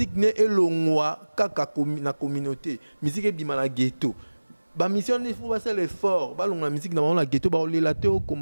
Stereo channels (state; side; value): inverted; both; correlation -1.00